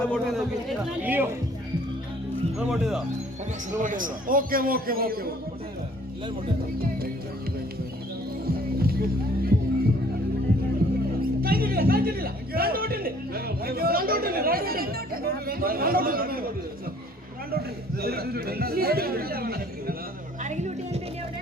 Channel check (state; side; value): normal; both; correlation 0.57